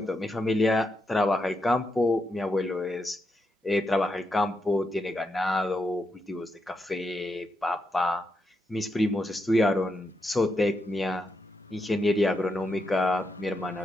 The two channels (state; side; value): normal; both; correlation 0.83